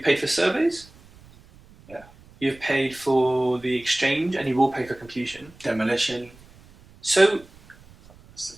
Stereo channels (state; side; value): noise; right; rumble, 24 dB below the sound